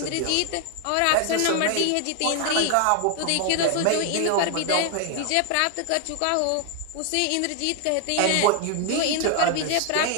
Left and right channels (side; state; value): both; different; correlation 0.00